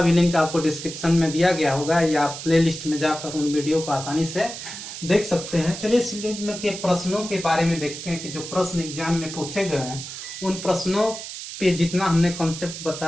भी लिंक आपको डिस्क्रिप्शन में दिया गया होगा या आप प्ले लिस्ट में जाकर उन वीडियो को आसानी से देख सकते हैं। चलिए इस लिंक के प्रश्नों के बारे में देखते हैं कि जो प्रश्न एग्जाम में पूछे गए हैं उन प्रश्नों पे जितना हमने कॉन्सेप्ट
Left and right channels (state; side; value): noise; right; hiss, 10 dB below the sound